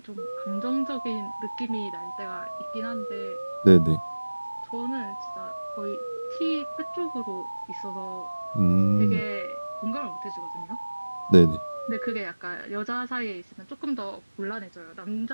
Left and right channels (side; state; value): both; inverted; correlation -1.00